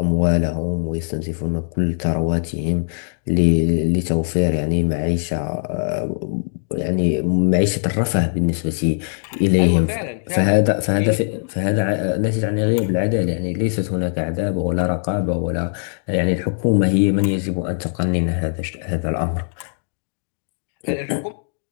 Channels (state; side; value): silent; right; digital silence